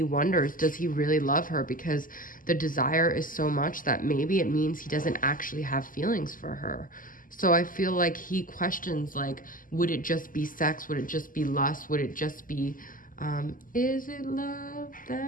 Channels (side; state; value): right; late; 0.40 ms